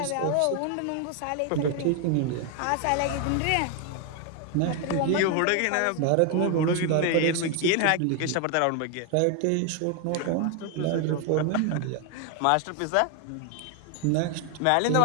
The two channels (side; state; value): both; different; correlation 0.01